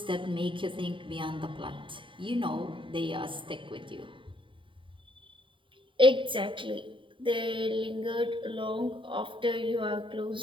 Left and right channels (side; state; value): left; late; 0.25 ms